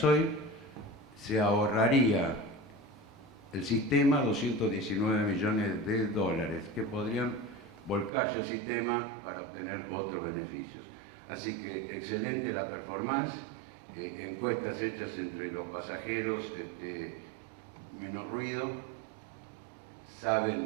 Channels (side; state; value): left; drops out; at 8.1 s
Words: se ahorraría el sistema 219 millones de dólares que podrían volcarse al sistema para obtener otros beneficios. Así que excelente la performance, encuestas hechas entre los pasajeros, menos ruido,